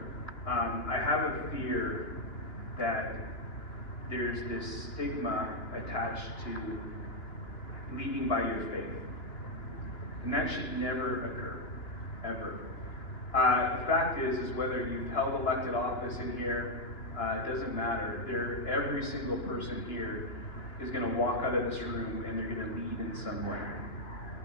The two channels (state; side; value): late; right; 2.9 ms